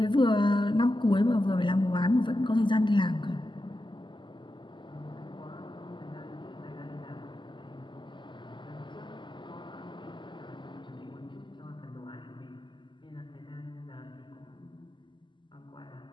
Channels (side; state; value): right; late; 0.23 ms